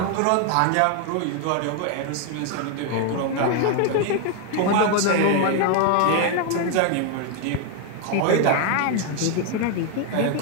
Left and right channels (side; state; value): both; different; correlation 0.00